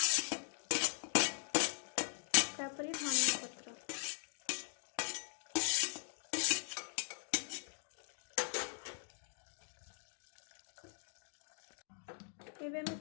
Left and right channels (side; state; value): right; silent; digital silence